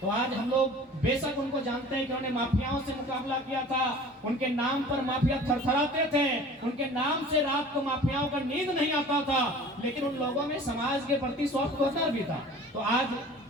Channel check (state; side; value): normal; both; correlation 0.44